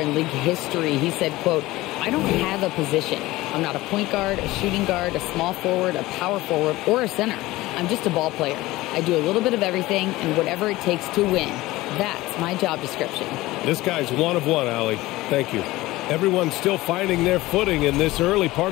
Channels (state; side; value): quieter; right; 18.5 dB